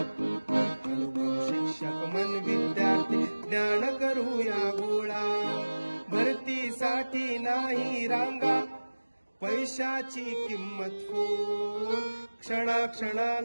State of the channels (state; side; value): inverted; both; correlation -1.00